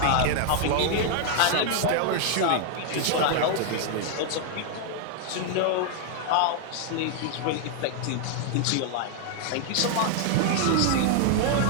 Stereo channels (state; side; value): different; both; correlation 0.00